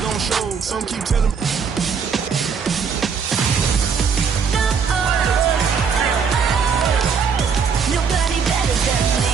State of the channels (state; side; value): quieter; left; 6.2 dB